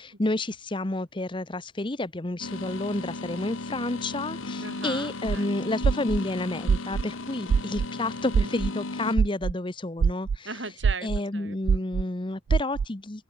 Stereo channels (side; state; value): both; normal; correlation 0.69